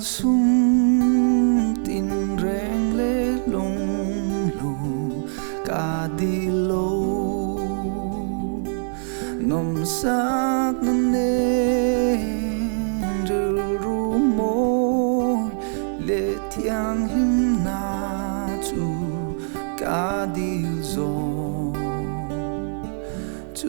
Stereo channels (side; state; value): left; silent; 62 dB below the other